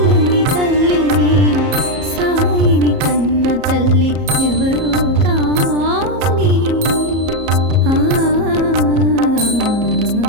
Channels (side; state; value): left; late; 34 ms